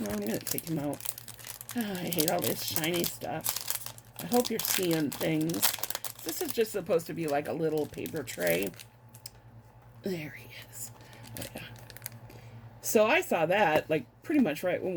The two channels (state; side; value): identical; both; correlation 1.00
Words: going to take him out. Oh, I hate all this shiny stuff. I hope you're seeing things. This is just supposed to be like a little paper tray. There he is. Oh, yeah. So I saw that, like, pretty much right when